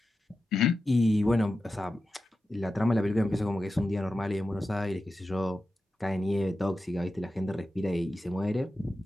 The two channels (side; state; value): both; normal; correlation 0.92